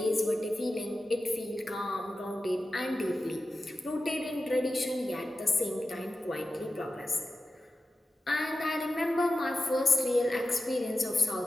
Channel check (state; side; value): normal; both; correlation 0.92